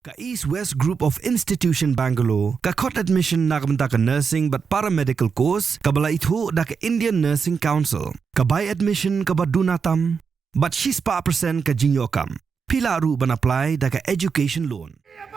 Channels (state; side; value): quieter; left; 5.8 dB